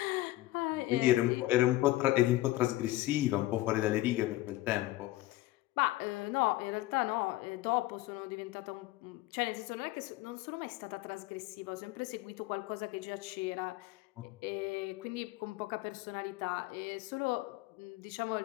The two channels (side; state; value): right; quieter; 17.5 dB